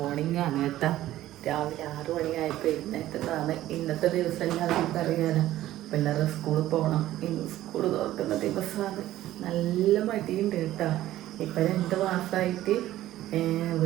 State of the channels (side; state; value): left; quieter; 14.3 dB